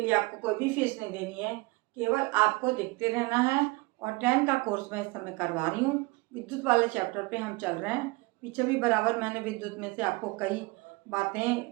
लिए आपको कोई भी फीस नहीं देनी है, केवल आपको देखते रहना है। और 10 का कोर्स मैं इस समय करवा रही हूँ। विद्युत वाले चैप्टर पे हम चल रहे हैं। पीछे भी बराबर मैंने विद्युत में से आपको कई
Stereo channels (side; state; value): left; quieter; 24.7 dB